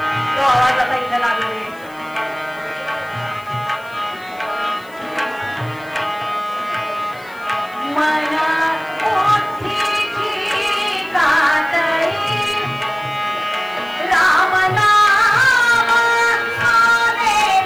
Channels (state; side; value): noise; left; hiss, 26 dB below the sound